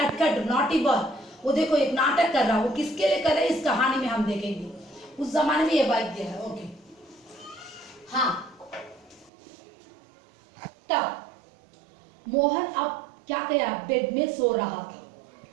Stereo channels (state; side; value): drops out; left; at 9.3 s